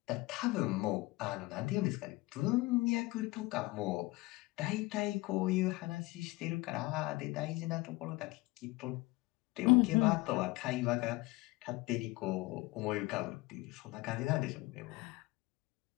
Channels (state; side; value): quieter; right; 21.6 dB